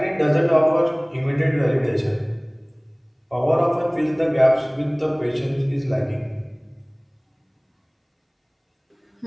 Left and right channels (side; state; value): both; identical; correlation 1.00